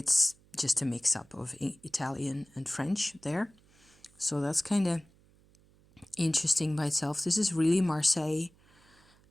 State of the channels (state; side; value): noise; right; hum, 30 dB below the sound